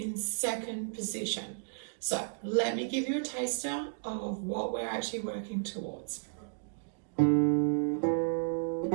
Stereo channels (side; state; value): left; silent; digital silence